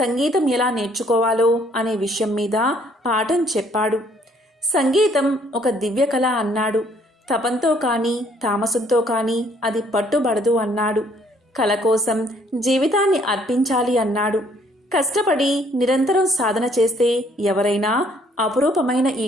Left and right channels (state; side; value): normal; both; correlation 0.64